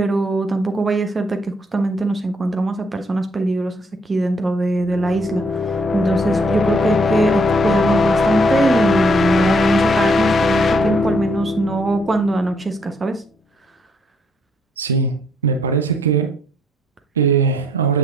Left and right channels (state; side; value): normal; both; correlation 0.70